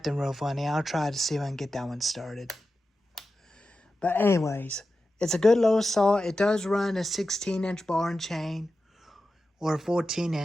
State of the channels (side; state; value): both; normal; correlation 0.92